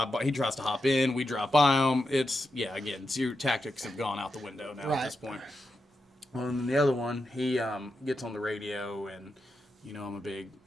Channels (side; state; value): both; normal; correlation 0.87